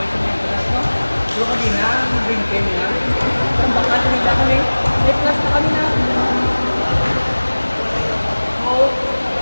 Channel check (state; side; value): inverted; both; correlation -1.00